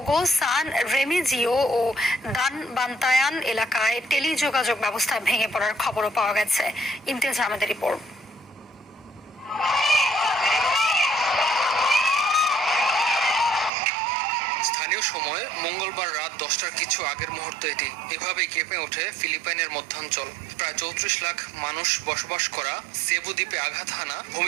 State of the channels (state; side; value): drops out; left; at 13.7 s